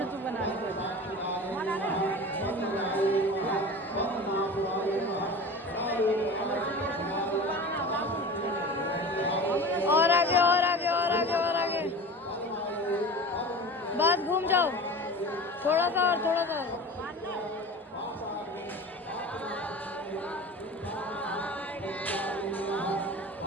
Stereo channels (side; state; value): both; normal; correlation 0.35